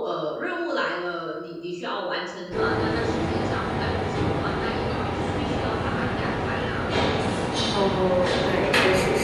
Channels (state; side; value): identical; both; correlation 1.00